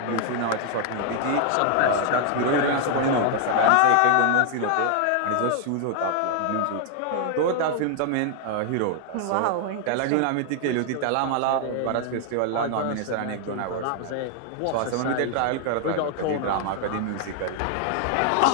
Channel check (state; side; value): different; both; correlation 0.00